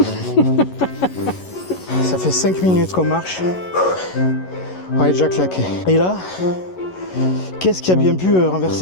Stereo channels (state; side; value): late; right; 11 ms